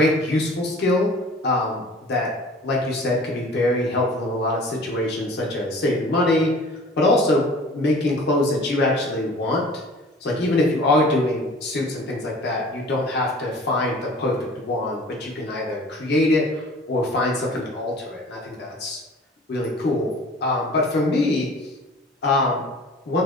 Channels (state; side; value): normal; both; correlation 0.46